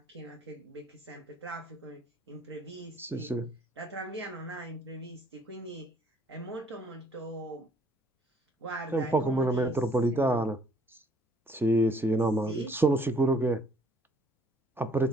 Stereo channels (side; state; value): both; normal; correlation 0.61